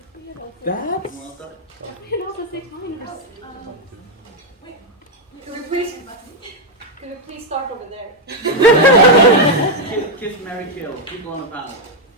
That's... Well done. We can also say minors. Could we please start over there? Kiss, marry, kill. People on the panel.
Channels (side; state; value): both; normal; correlation 0.01